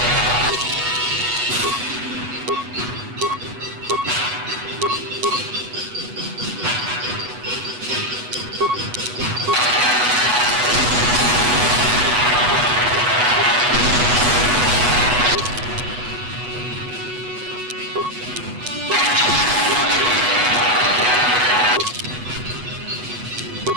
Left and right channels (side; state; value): left; late; 8.1 ms